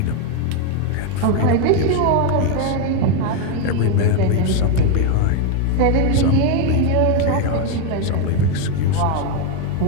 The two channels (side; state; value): both; different; correlation 0.01